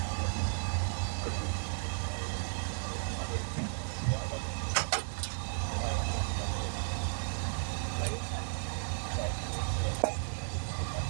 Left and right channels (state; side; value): silent; left; digital silence